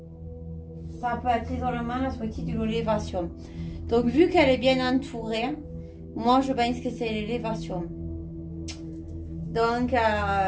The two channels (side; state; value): both; identical; correlation 1.00